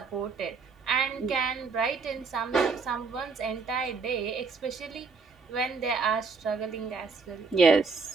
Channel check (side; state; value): left; quieter; 4.8 dB